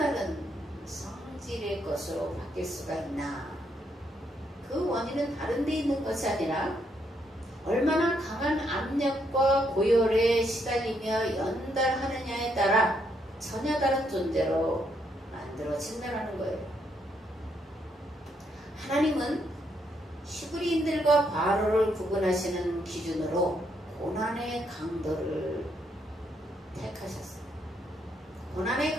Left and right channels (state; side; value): normal; both; correlation 0.75